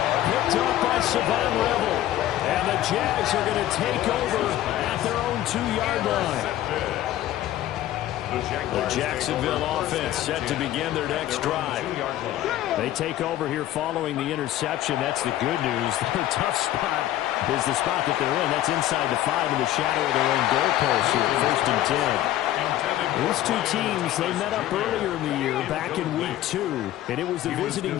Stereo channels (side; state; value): right; quieter; 13.5 dB